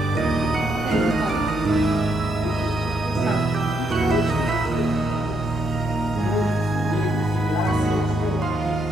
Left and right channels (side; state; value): both; normal; correlation 0.76